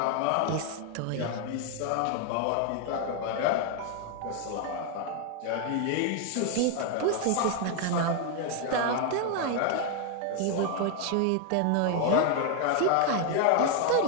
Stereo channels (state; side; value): different; both; correlation 0.00